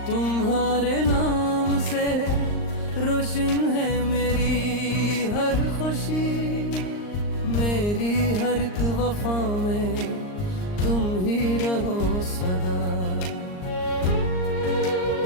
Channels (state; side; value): late; right; 39 ms